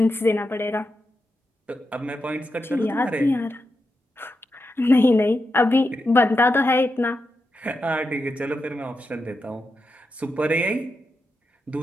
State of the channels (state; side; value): normal; both; correlation 0.87